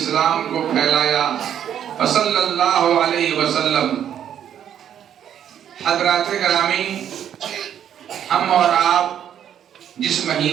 کو پھیلایا، صلی اللہ علیہ وسلم. حضرات گرامی، ہم اور آپ جس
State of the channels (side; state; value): left; quieter; 9.7 dB